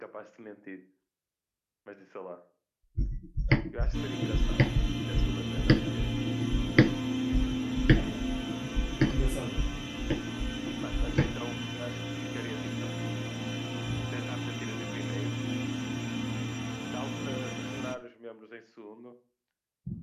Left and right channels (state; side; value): identical; both; correlation 1.00